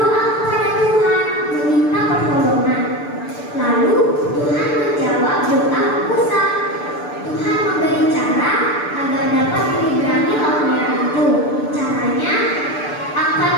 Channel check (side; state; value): right; late; 6.8 ms